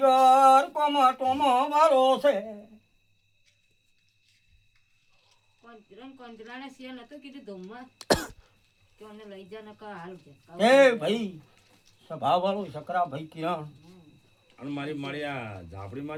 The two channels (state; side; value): identical; both; correlation 1.00